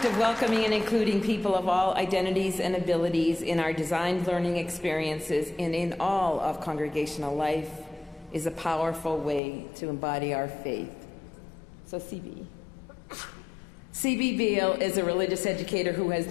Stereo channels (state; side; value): drops out; right; at 9.4 s